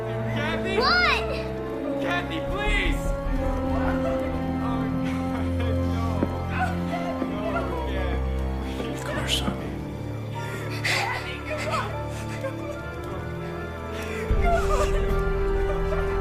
Kathy? What? Kathy, please! Come here, son.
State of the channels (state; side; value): identical; both; correlation 1.00